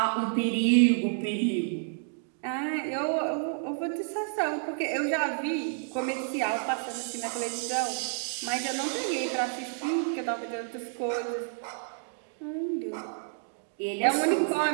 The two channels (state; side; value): silent; left; digital silence